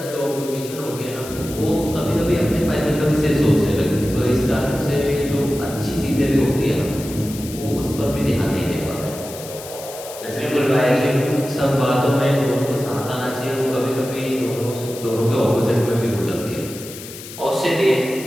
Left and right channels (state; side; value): noise; left; hiss, 13 dB below the sound